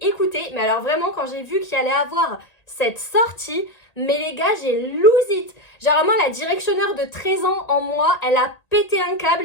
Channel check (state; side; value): late; right; 1.8 ms